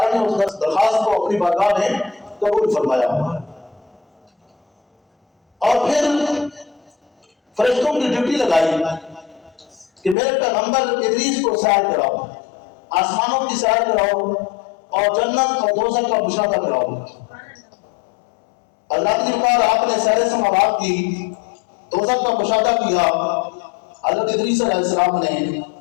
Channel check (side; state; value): right; drops out; at 10.2 s